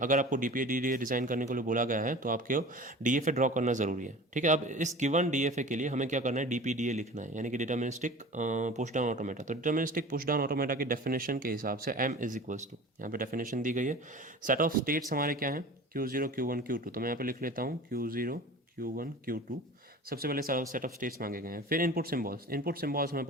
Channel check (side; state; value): both; normal; correlation 0.39